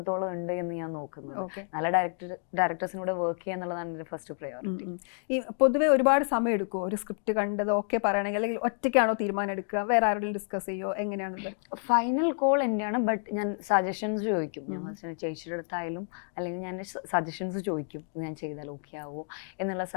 ഉണ്ട് എന്ന് ഞാൻ നോക്കുന്നത്. നല്ല ഡയറക്ടേഴ്സിനൂടെ വർക്ക് ചെയ്യുക എന്നുള്ളതാണ് എൻ്റെ ഫസ്റ്റ് പ്രയോറിറ്റി. ഈ പൊതുവെ ഒരുപാട് സമയം എടുക്കുമോ ഒരു സ്ക്രിപ്റ്റ് കണ്ടത് ഓക്കെ പറയണമെങ്കിൽ, അല്ലെങ്കിൽ ഒറ്റയ്ക്കാണോ തീരുമാനം എടുക്കുക, വേറെ ആരോടും ഡിസ്കസ് ചെയ്യുമോ, എങ്ങനെയാണത്? ഫൈനൽ കോൾ എന്റെയാണ്. ബട്ട് ഞാൻ സജഷൻസ് ചോദിക്കും. ചേച്ചിയുടെ അടുത്തായാലും അല്ലെങ്കിൽ ഞാൻ സജഷൻസ് ചോദിക്കും, ഞാൻ ചെയ്താൽ ഓക്കെ ആവുമോ എന്നുള്ള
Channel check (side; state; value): right; silent; 58 dB below the other